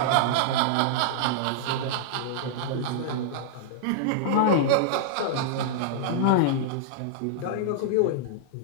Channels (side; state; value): both; different; correlation -0.01